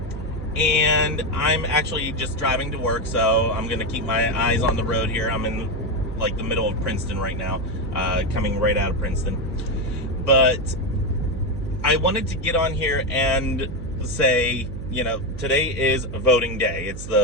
and I'm actually just driving to work, so I'm going to keep my eyes on the road here. I'm in like the middle of Princeton right now, coming right out of Princeton. But I wanted to get on here and say, you know, today is voting day. It's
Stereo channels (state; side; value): noise; right; hum, 9 dB below the sound